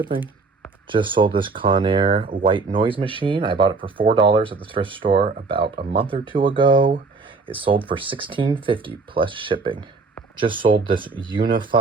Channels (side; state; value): left; quieter; 4.2 dB